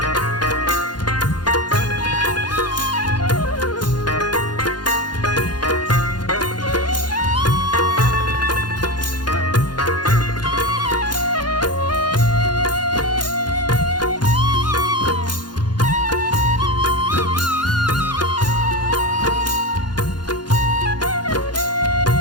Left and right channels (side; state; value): right; late; 0.70 ms